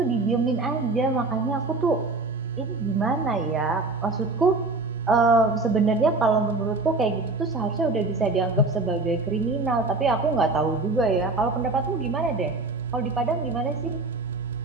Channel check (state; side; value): quieter; left; 3.3 dB